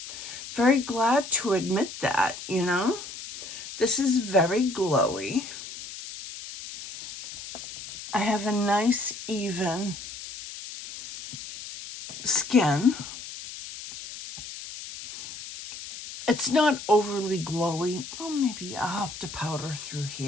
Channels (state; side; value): noise; left; hiss, 11 dB below the sound